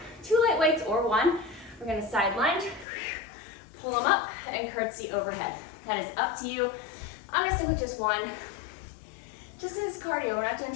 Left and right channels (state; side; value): drops out; right; at 2.9 s